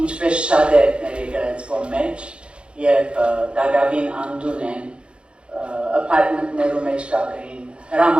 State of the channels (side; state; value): left; late; 0.056 ms